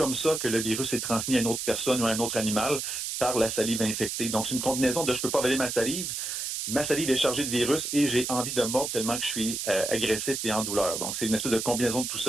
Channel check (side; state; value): right; noise; hiss, 3 dB below the sound